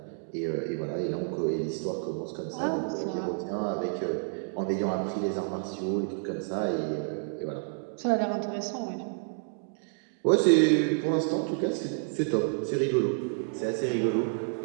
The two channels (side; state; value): left; silent; 58 dB below the other